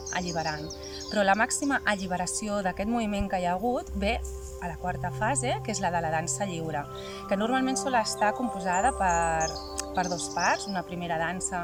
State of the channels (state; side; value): identical; both; correlation 1.00